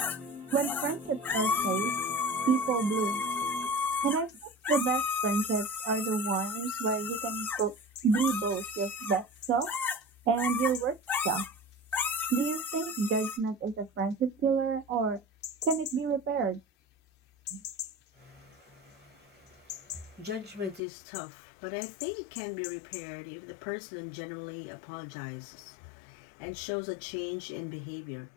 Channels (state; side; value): drops out; right; at 20.8 s